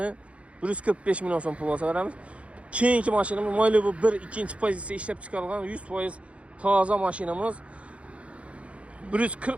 145 milyon son pul olsa verəmiz. Keyinki maşinimiz Malibu 1 ikinci pozisiya işləb çıxarılan 100% taza maşinimiz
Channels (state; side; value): late; left; 0.062 ms